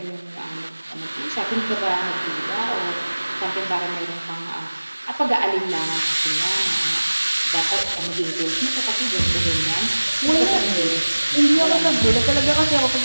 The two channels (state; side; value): inverted; both; correlation -1.00